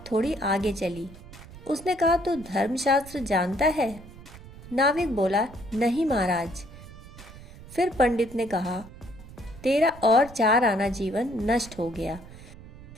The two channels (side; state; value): right; noise; rumble, 18 dB below the sound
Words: थोड़ी आगे चली। उसने कहा, तू धर्मशास्त्र जानता है? नाविक बोला, नहीं महाराज। फिर पंडित ने कहा, तेरा और 4 आना जीवन नष्ट हो गया,